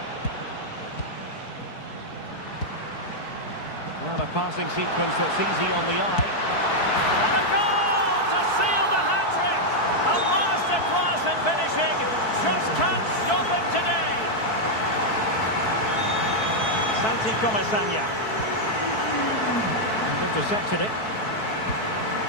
And a passing sequence that's easy on the eye. And a goal to seal the hat-trick! A masterclass in finishing. Just can't stop him today. Santi Comesaña. And intercepted it.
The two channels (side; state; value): right; late; 4.6 ms